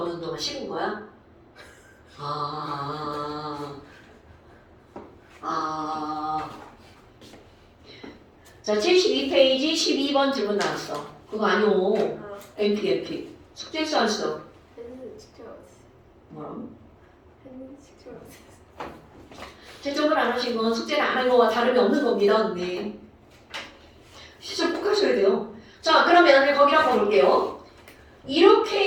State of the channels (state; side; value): identical; both; correlation 1.00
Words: 동안 식은 거야? 자, 72페이지 12번 질문 나왔어. 그거 아니오. MP. 숙제했어, 안 써? 했는데 숙제가 없어요. 뭐라고? 했는데 숙제가 없어요. 채점을 안 하신 건 숙제를 안 한 거와 다름이 없는 겁니다, 언니. 시점 꼭 하셔야 돼요. 자, 그러면 거기 한번 볼게요.